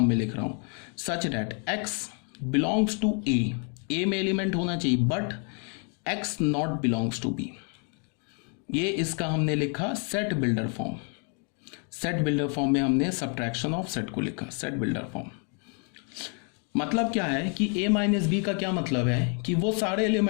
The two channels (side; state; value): right; quieter; 39.7 dB